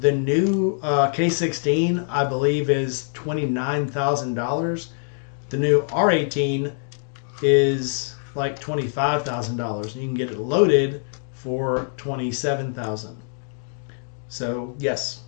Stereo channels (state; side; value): silent; right; digital silence